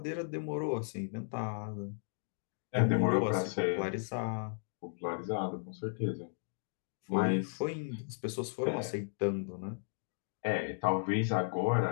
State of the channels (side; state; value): right; silent; digital silence